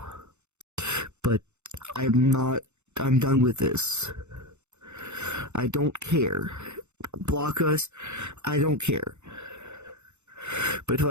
but I'm done with this. I don't care. Block us, I don't care. But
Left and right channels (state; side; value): late; left; 0.83 ms